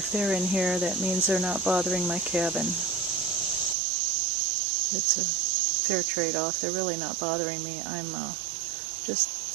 they're in here, that means they're not bothering my cabin. It's a fair trade-off. They're really not bothering me. I'm just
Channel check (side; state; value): left; drops out; at 3.8 s